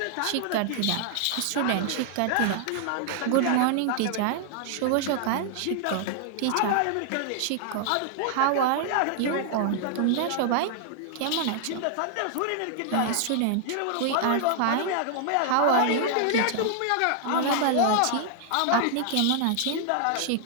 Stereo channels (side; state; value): both; different; correlation 0.00